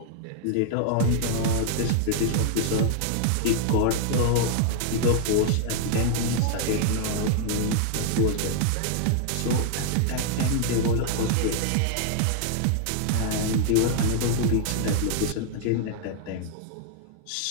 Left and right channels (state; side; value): different; both; correlation 0.00